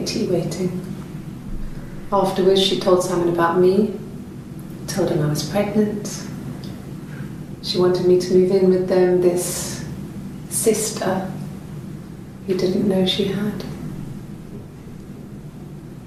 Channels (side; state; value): both; identical; correlation 1.00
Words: tea waiting. Afterwards, she told Simon about me, told him I was pregnant. She wanted me to move in with them, this sister he didn't know she had.